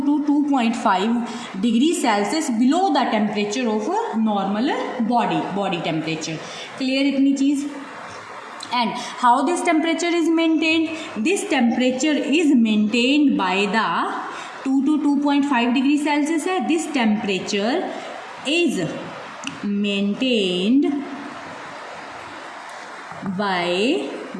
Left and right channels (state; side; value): identical; both; correlation 1.00